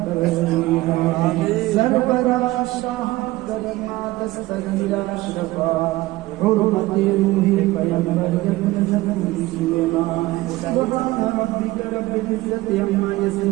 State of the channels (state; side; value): quieter; left; 18.7 dB